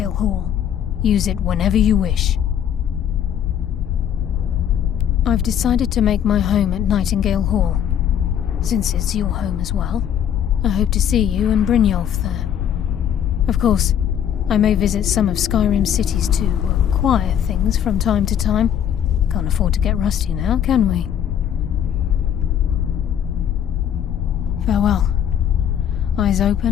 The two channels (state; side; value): quieter; right; 9.5 dB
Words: Hall. Use it whenever you wish. I've decided to make my home at Nightingale Hall. Since it's your home as well, I hope to see you and Brynjolf there. Of course, I may visit some of Skyrim's cities to acquire things from time to time. Can't afford to get rusty now, can we? Farewell. Eyes